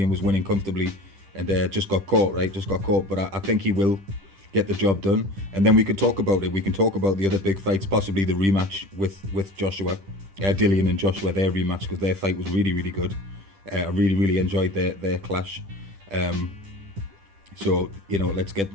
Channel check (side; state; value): left; late; 10 ms